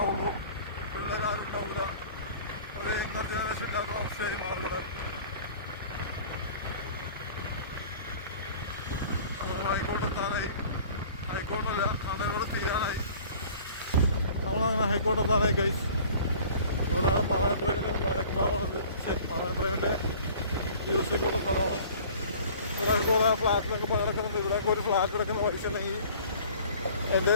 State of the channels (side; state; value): both; inverted; correlation -0.47